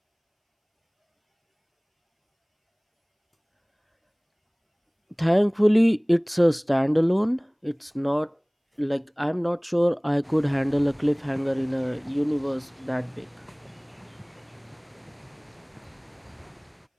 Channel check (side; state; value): both; identical; correlation 1.00